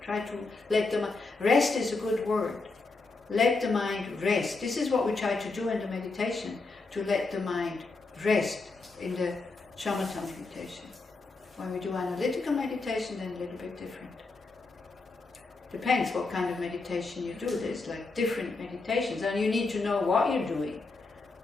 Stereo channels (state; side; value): quieter; right; 3.7 dB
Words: Try to let the mind... Rest is a good word. Let the mind rest. This is what we try to do in the meditation, to let the mind rest in the shamatha meditation. When we do analytical meditation, then a little bit different. Depends what kind of meditation you do. There's like different meditations, and you need to know what you're doing.